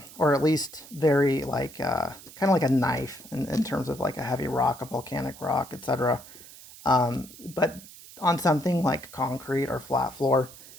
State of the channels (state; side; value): noise; right; hiss, 18 dB below the sound